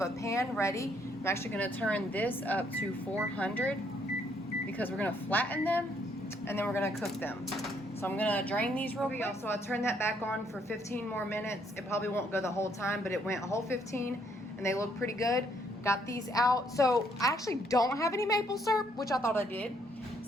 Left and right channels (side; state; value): both; normal; correlation 0.70